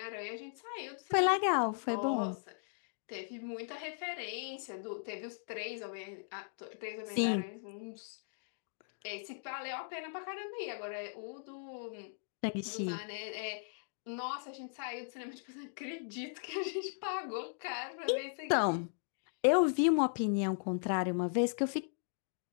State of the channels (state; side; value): silent; right; digital silence